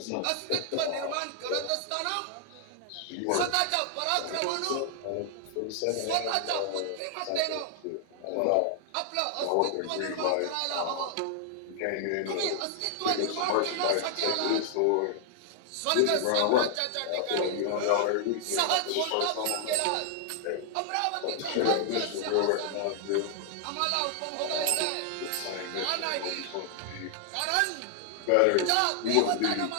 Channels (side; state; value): both; different; correlation 0.00